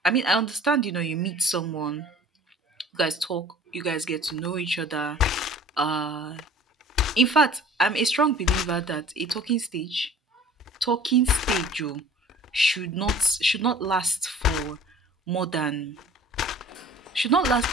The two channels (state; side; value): normal; both; correlation 0.48